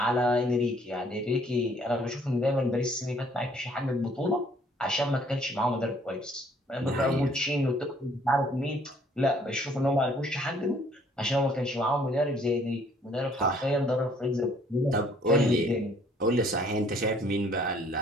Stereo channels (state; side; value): normal; both; correlation 0.61